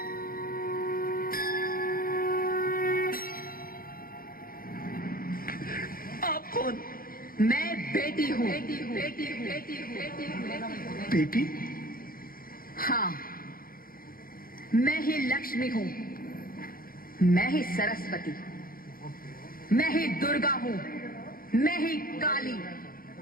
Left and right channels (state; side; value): late; right; 0.42 ms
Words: आप कौन? मैं बेटी हूँ। बेटी? हाँ, मैं ही लक्ष्मी हूँ, मैं ही सरस्वती, मैं ही दुर्गा हूँ, मैं ही काली,